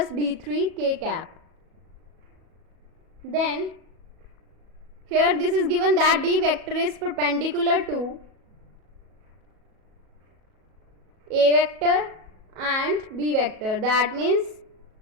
D3 k cap. Then here this is given that D vector is perpendicular to A vector and B vector. That means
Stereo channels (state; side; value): late; left; 37 ms